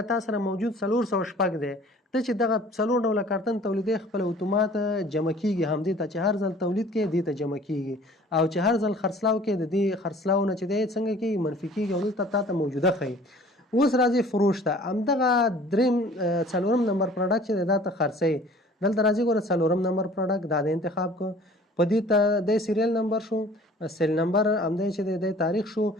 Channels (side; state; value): both; normal; correlation 0.50